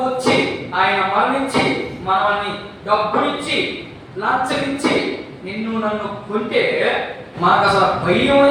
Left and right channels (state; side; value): identical; both; correlation 1.00